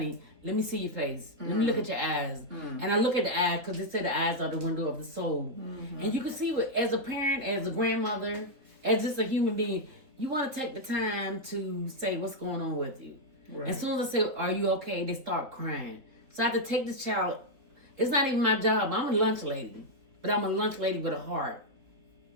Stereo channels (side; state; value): left; late; 3.9 ms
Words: let me see your face. Let me look at your eyes. And I look at the eyes because they say the eyes are the window of the soul. And you can see as a parent, as a grandmother, as just a human being, you want to take the time to say what's going on with you. Right. As soon as I say, are you okay? They start crying. So I have to take this child. It's not even my job. I'm a lunch lady, but I'm a lunch lady with a heart.